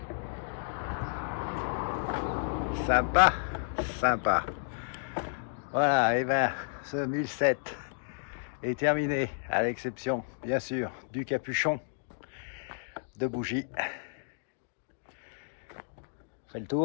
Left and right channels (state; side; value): silent; right; digital silence